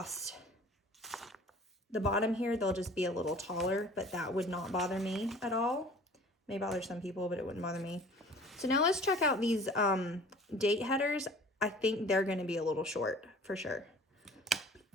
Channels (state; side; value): normal; both; correlation 0.48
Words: the bottom here. They'll just be a little taller, but that would not bother me at all. May bother some people, but it wouldn't bother me. So now let's check out these date headers. I think they're going to be a little short for sure.